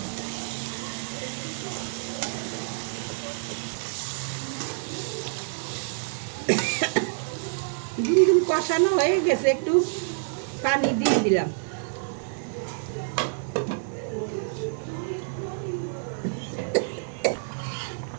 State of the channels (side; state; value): left; silent; 60 dB below the other